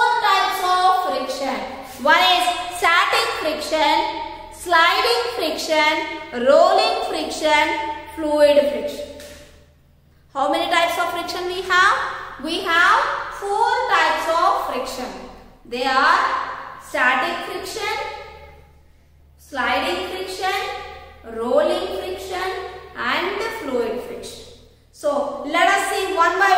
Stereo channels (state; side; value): identical; both; correlation 1.00